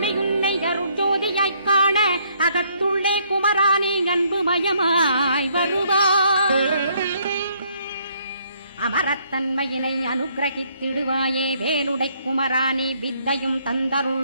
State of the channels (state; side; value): inverted; both; correlation -0.67